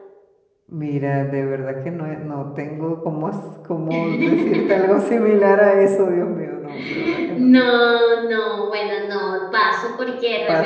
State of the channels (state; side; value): identical; both; correlation 1.00